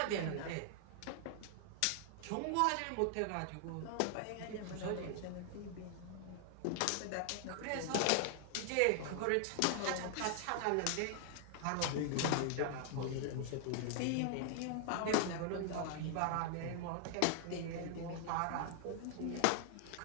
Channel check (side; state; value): both; different; correlation 0.00